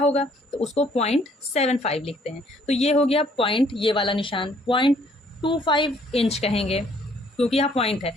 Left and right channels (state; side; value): normal; both; correlation 0.63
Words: तो उसको 0.75 लिखते हैं। तो ये हो गया पॉइंट, ये वाला निशान 0.25 इंच कहेंगे, क्योंकि यहाँ पॉइंट है।